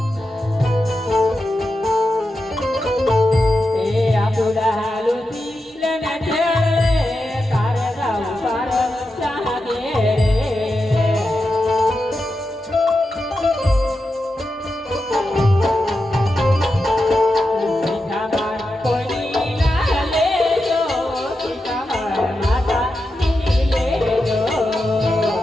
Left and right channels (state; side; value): normal; both; correlation 0.89